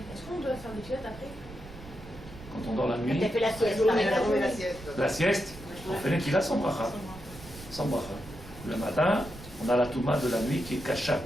est-ce qu'on doit faire des filettes après? Quand on dort la nuit, Tu as fait la sieste. la sieste, on fait Netilat sans bracha. Sans bracha. Le matin, on a la Touma de la nuit qui est kasha,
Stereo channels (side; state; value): right; noise; rumble, 16 dB below the sound